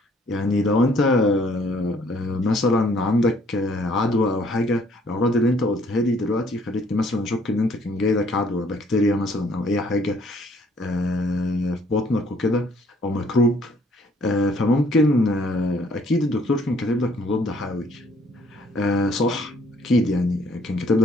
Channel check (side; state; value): both; normal; correlation 0.62